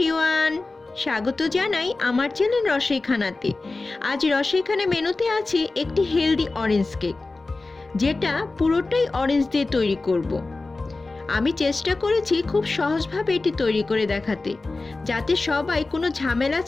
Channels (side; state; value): right; quieter; 3.4 dB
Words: স্বাগত জানাই আমার চ্যানেল রসইখানাতে। আজ রসইখানা মেনুতে আছে একটি হেলদি অরেঞ্জ কেক, যেটা পুরোটাই অরেঞ্জ দিয়ে তৈরি করব। আমি চেষ্টা করেছি খুব সহজভাবে এটি তৈরি করে দেখাতে, যাতে সবাই কোনো ঝামেলা